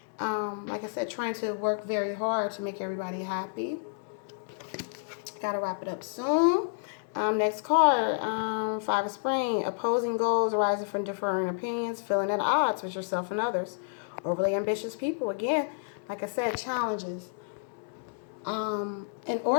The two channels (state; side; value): silent; right; 58 dB below the other